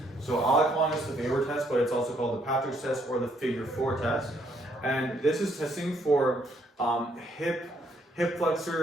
So I like calling this the FABER test, but it's also called the Patrick's test or the figure 4 test. And this is testing for hip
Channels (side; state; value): both; normal; correlation 0.70